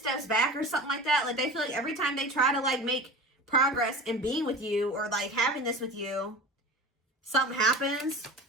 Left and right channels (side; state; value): both; normal; correlation 0.33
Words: back or something like that. Like they feel like every time they try to like make progress in being with you or like having this with you, something happens.